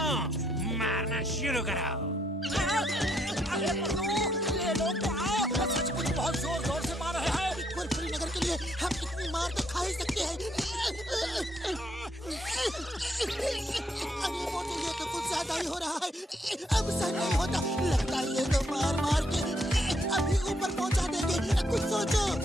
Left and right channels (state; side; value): normal; both; correlation 0.73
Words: मारना शुरू करो। अरे ये लोग तो आओ, सचमुच बहुत जोर जोर से मार रहे हैं। कुरकुरी नगर के लिए हम इतनी मार तो खा ही सकते हैं। अरे मोटू, ये तो कुछ ज्यादा ही हो रहा है। अब सहन नहीं होता, लगता है ये तो मार मार के अभी ऊपर पहुंचा देंगे। कुछ सोचो।